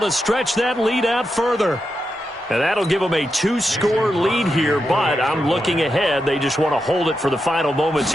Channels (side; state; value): both; normal; correlation 0.87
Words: to stretch that lead out further. And that'll give them a 2-score lead here, but I'm looking ahead. They just want to hold it for the final moments